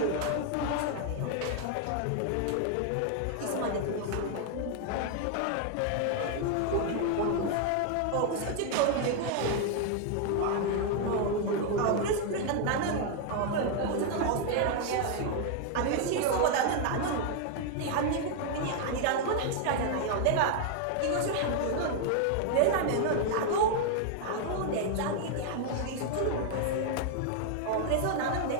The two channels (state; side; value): different; both; correlation 0.00